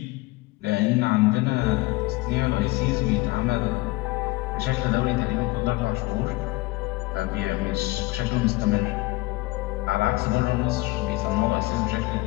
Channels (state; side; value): quieter; right; 21.7 dB